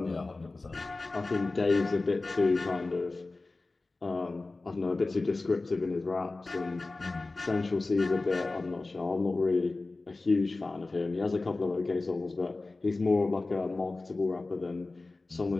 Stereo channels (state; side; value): quieter; right; 3.3 dB